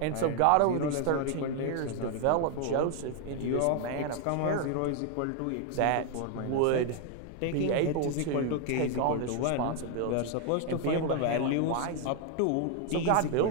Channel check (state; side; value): different; both; correlation 0.00